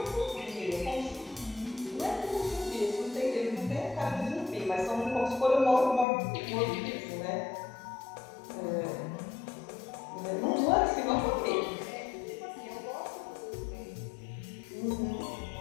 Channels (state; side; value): drops out; right; at 6.1 s